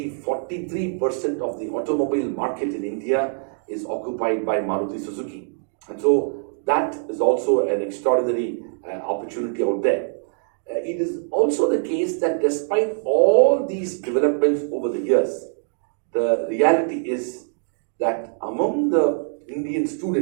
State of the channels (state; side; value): silent; left; digital silence